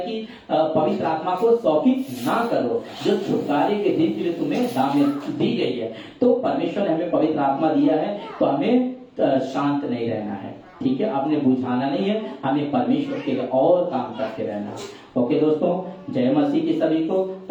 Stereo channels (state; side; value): identical; both; correlation 1.00